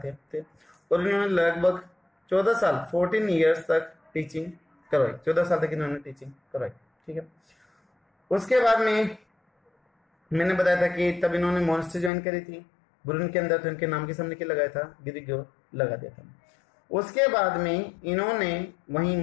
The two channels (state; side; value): drops out; right; at 12.1 s